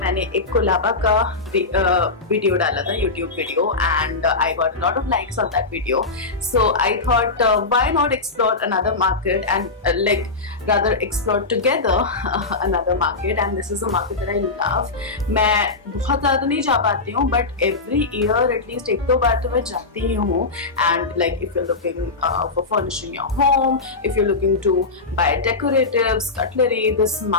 एक कोलाबा का वीडियो डाला था, YouTube video, and I got a lot of likes on that video. So I thought, why not explore another market and rather explore together another market, and this is a market that I love. मैं बहुत ज़्यादा नहीं जा पाती हूँ, but every year at least एक दो बार तो मैं जाती ही हूँ. And like if you're looking for furnishing your home, if you're looking to buy decoratives, cutlery, this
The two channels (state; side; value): quieter; right; 3.7 dB